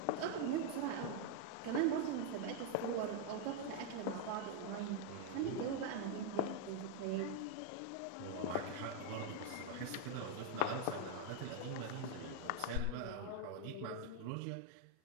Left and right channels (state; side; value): different; both; correlation 0.00